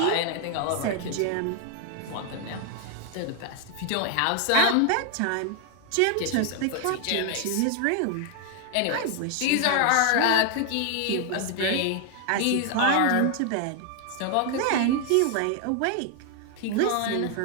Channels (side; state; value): both; different; correlation 0.00